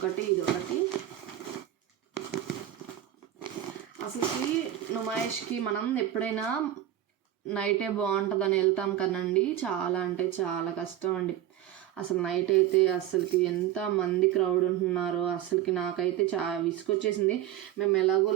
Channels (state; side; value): quieter; left; 12.0 dB